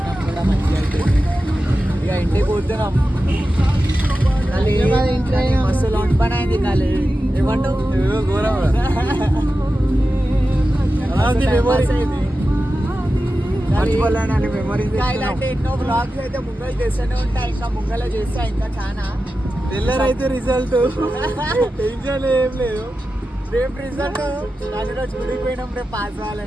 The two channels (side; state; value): both; normal; correlation 0.92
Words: కూడా మంచిగా అయిపోయింది. ఇక ఇంటికి పోతున్నాం. మస్తు లాంటి పని అయింది. కాలే ఏమంటావు? ఘోరం ఇలాంటి ఎన్నో బ్లాగ్స్ అయితే ముంగలు చేస్తూనే ఉంటాయి. ఇంకా ముంగల చేస్తా ఇంకా చాలా తెల్లరైతే రిజల్ట్ టెన్షన్ ఏం లేదు. రేపు రిజల్ట్ దానిలో చూడిపోయినాం. రేపు పాస్